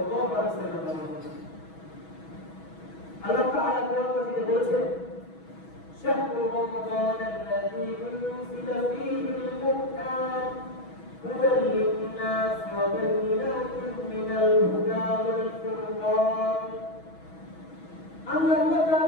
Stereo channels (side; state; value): right; late; 6.2 ms